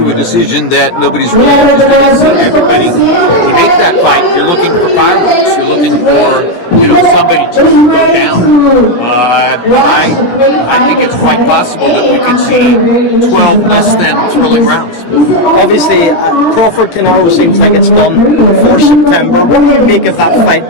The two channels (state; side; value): late; right; 17 ms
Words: a decision that nobody's really interested in seeing. Everybody, to make that fight, you're looking for fireworks. You're looking for, you know, somebody to go down. I think it's quite possible that we could see 12 less than thrilling rounds. Obviously, Crawford CANELO seems like it's done for September. What do you make of that fight?